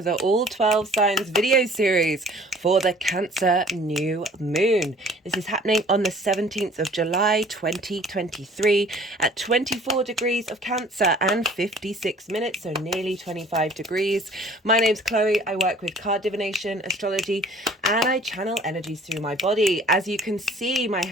the All 12 Signs video series for the Cancer New Moon. This is happening on the 17th of July 2023 at 24 degrees of Cancer and 56 minutes, so nearly 25 degrees. My name's Chloe. I work with card divination, astrology, and I channel energies through my body. As you can see, my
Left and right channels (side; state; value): both; normal; correlation 0.52